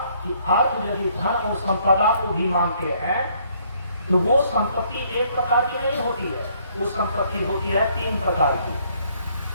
कि अर्थ यदि धन और संपदा को भी मानते हैं तो वो संपत्ति एक प्रकार की नहीं होती है, वो संपत्ति होती है तीन प्रकार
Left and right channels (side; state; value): both; inverted; correlation -0.65